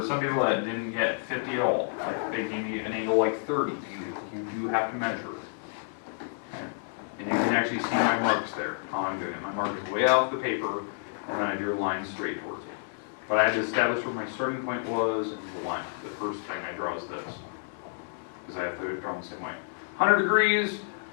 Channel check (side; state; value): right; silent; digital silence